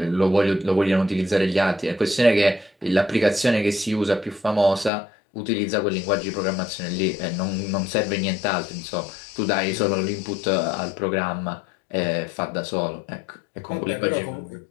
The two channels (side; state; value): right; drops out; at 4.9 s